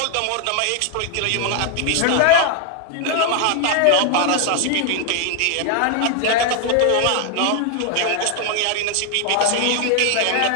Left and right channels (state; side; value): different; both; correlation 0.00